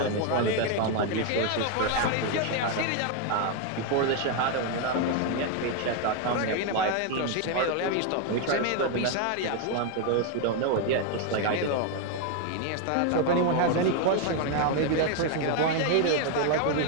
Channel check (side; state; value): both; different; correlation 0.01